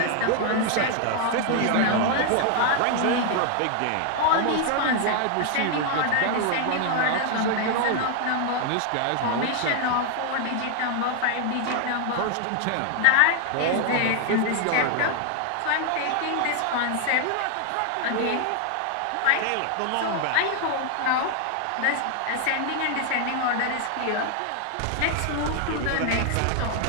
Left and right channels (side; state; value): both; different; correlation 0.00